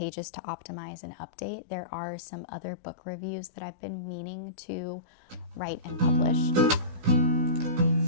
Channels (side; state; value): left; late; 16 ms